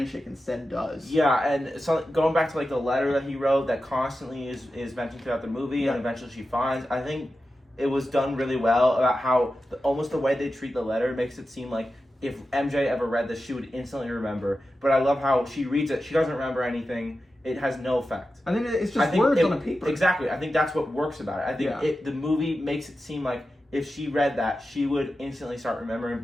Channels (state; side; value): normal; both; correlation 0.92